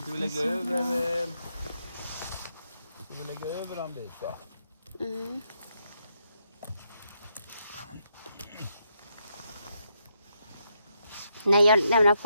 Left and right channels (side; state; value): both; inverted; correlation -0.80